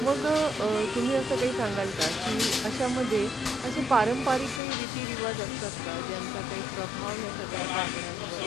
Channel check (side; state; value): right; drops out; at 4.6 s